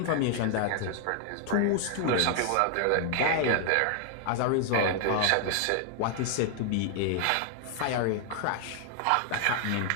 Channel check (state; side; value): different; both; correlation 0.00